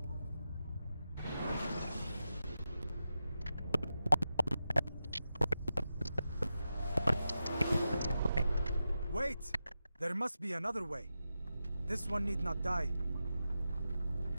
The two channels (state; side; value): inverted; both; correlation -0.91